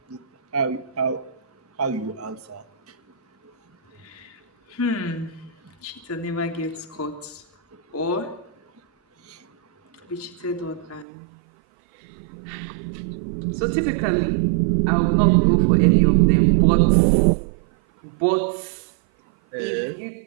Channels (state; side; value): drops out; left; at 11.1 s